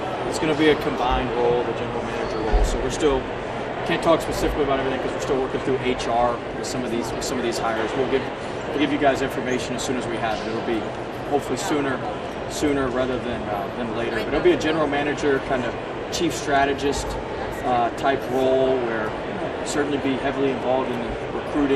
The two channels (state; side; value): identical; both; correlation 1.00